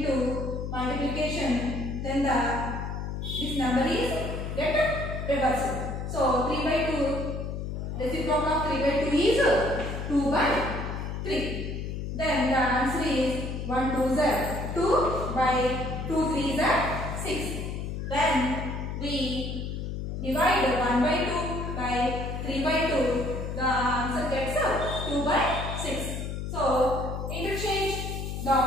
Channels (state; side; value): noise; left; hum, 5 dB below the sound